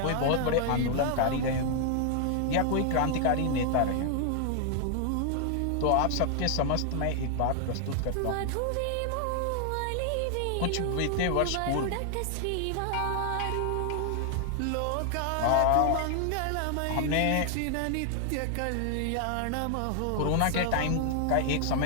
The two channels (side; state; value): both; different; correlation 0.00